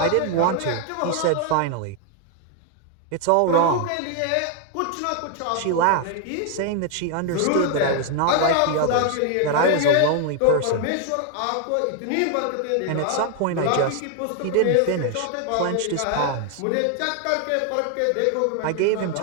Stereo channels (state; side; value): different; both; correlation 0.00